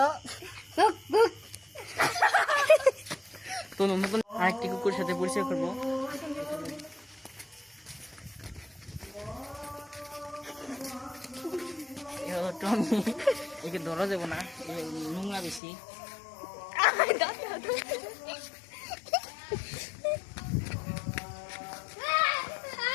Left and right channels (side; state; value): right; drops out; at 15.6 s